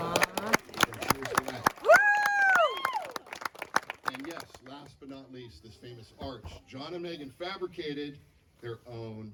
And yes, last but not least, this famous arch. John and Megan fabricated their own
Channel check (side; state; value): both; identical; correlation 1.00